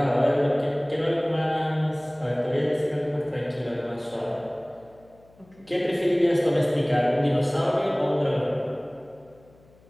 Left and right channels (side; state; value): left; noise; hum, 29 dB below the sound